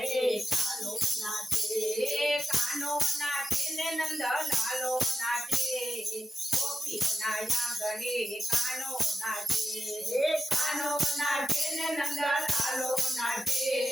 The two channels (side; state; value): both; normal; correlation 0.89